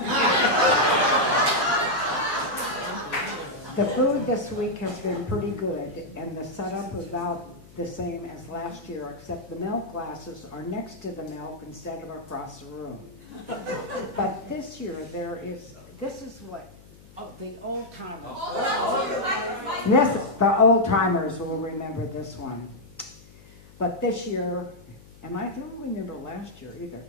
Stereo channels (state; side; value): noise; left; hum, 22 dB below the sound